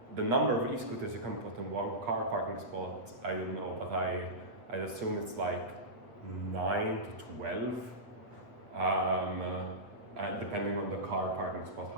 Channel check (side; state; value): left; late; 8.1 ms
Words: number of e-scooters you can put in one car parking spot, I don't know, but I assume it's like 9 to 12, depending on the car parking spot,